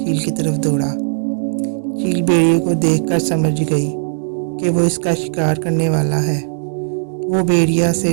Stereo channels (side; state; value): left; silent; digital silence